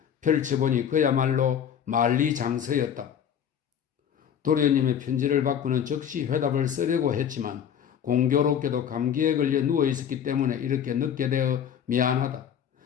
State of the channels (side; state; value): right; quieter; 8.7 dB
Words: 펼쳐보니 그야말로 만리장서였다. 도련님의 편지를 받고는 즉시 회답을 쓰려고 했지만 공교롭게도 감기에 걸려 누워있었기 때문에 이렇게 늦게 되어 미안하다.